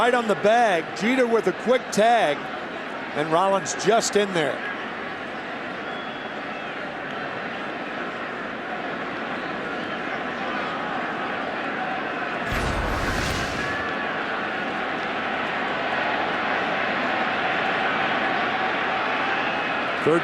on the bag. Jeter with a quick tag, and Rollins just in there.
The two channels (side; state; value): both; identical; correlation 1.00